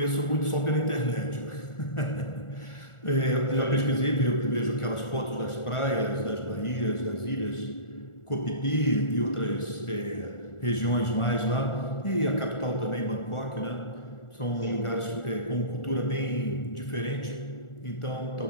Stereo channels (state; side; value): late; right; 1.4 ms